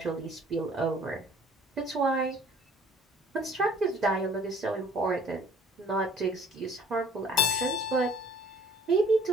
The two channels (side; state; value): both; normal; correlation 0.54